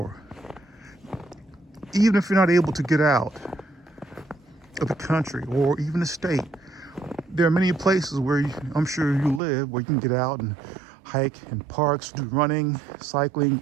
Even if you're not able to get out of the country or even the state, there are many places where I'm sure you live where you can get out and hike in parks, do running, cycling,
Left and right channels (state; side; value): drops out; left; at 9.4 s